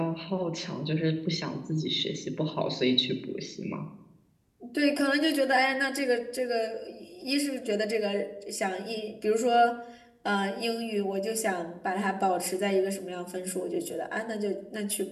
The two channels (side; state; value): both; identical; correlation 1.00